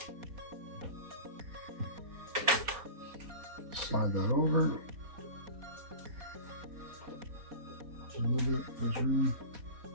Slide that over. Move it, there's room.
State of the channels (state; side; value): late; left; 4.3 ms